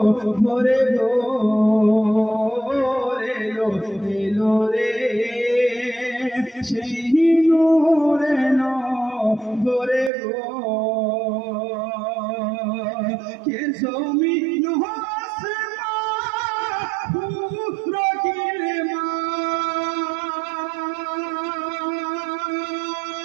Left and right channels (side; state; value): left; drops out; at 10.1 s